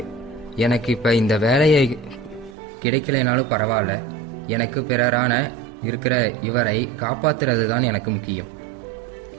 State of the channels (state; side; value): drops out; left; at 2.6 s